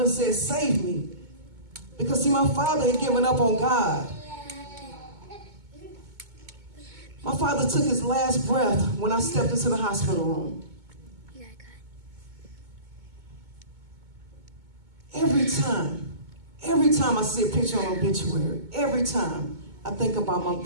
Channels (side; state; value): left; late; 2.2 ms